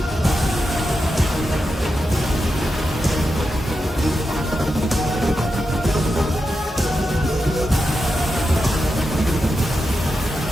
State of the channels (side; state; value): both; normal; correlation 0.88